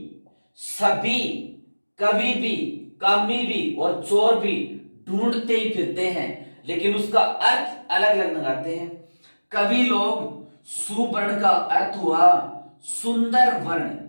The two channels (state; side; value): inverted; both; correlation -1.00